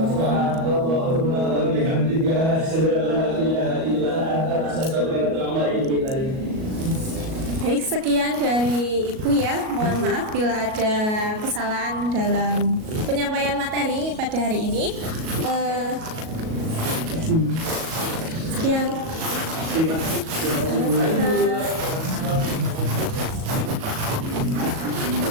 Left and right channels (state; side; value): late; left; 37 ms